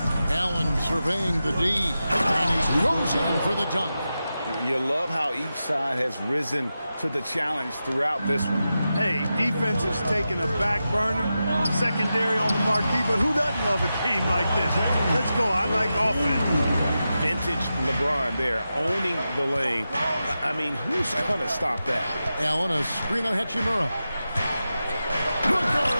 Allen surveying the D, and he goes in for the dunk. You love how each side has risen to the challenge throughout this one. Hey, defense is taking a back burner, secondary on the marquee, but who doesn't love a game like this? Let's go. I like offense. Vintage LeBron there, owning the lane. I mean, who's going to stop that? Allen, a screen on Hachimura. Booker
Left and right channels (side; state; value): both; inverted; correlation -0.91